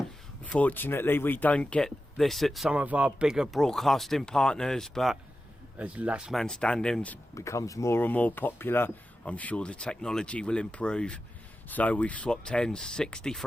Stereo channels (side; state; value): both; normal; correlation 0.92